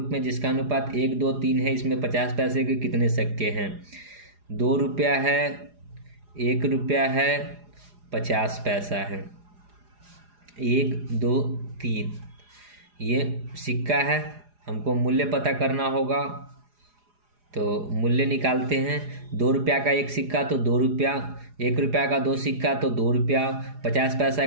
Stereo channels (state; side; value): late; left; 4.9 ms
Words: में जिसका अनुपात 1 2 3 है, इसमें 50 पैसे के कितने सिक्के हैं? 2 रुपया है, 1 रुपया है, 50 पैसा है। 1 2 3 ये सिक्का है, हमको मूल्य पता करना होगा, तो मूल्य निकालते हैं। 2 रुपया का 1 सिक्का तो 2 रुपया, 1 रुपया का 2 सिक्का तो 2 रुपया, 50 पैसा